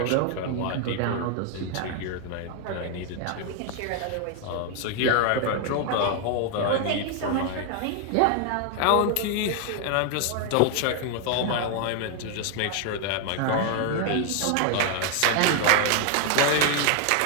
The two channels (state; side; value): different; both; correlation 0.01